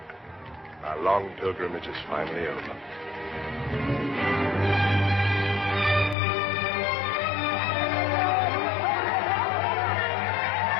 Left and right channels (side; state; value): right; drops out; at 6.2 s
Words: Our long pilgrimage is finally over.